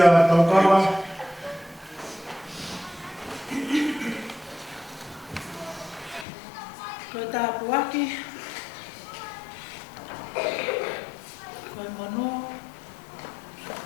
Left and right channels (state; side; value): drops out; right; at 6.2 s